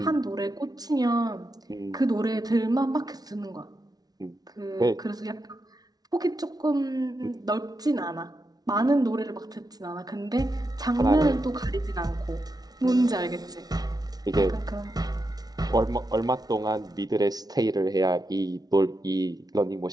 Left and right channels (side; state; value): left; late; 0.19 ms